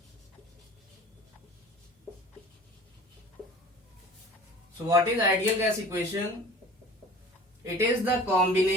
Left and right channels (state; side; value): normal; both; correlation 0.43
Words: So what is ideal gas equation? It is the